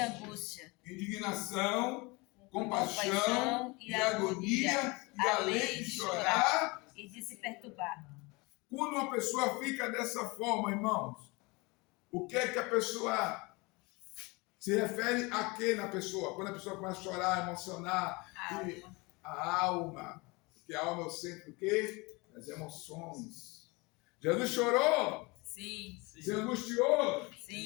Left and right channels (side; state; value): right; quieter; 25.8 dB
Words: Indignação, compaixão e agonia, e além de chorar. E de se perturbar. Quando uma pessoa fica dessa forma, irmãos, o que é que a pessoa se refere a quê na pessoa? Quando a pessoa começa a chorar, emocionar, a alma, porque a alma é o centro do quê? Das emoções. Jesus chorou? Sim. Se angustiou?